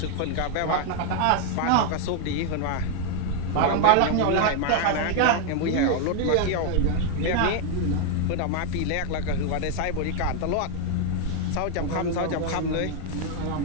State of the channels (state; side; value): different; both; correlation 0.01